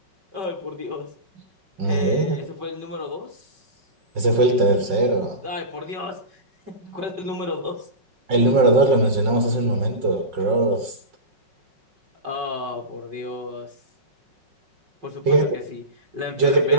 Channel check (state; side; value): late; left; 5.5 ms